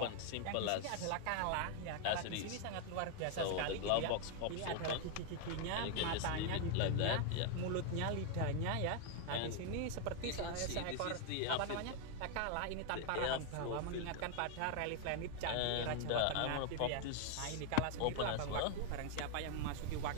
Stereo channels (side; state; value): both; different; correlation 0.01